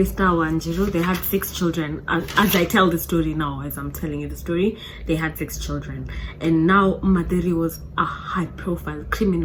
Wanjiru. They had 6 children. As I tell the story now, as I'm telling you the story, they had 6 children. And now Madeli was a high-profile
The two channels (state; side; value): identical; both; correlation 1.00